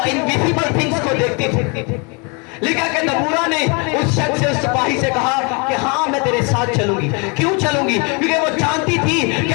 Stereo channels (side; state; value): right; quieter; 32.0 dB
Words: इनविजिबल थिंग्स को देखती थी। लिखा कि दबूरा ने उस शख्स से, उस सिपाही से कहा कि हाँ मैं तेरे साथ चलूंगी। क्यों चलूंगी? क्योंकि वो जानती थी